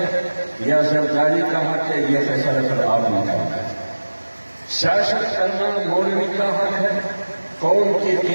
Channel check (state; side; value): inverted; both; correlation -1.00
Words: یا زرداری کا حق ہے، یہ فیصلہ پھر آپ نے کرنا ہے۔ سیاست کرنا مولوی کا حق ہے، قوم کی